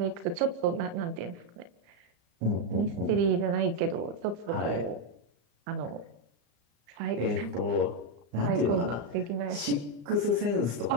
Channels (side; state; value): left; late; 34 ms